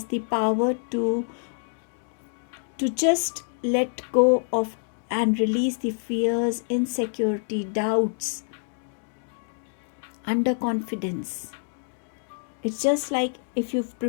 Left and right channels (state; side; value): silent; right; digital silence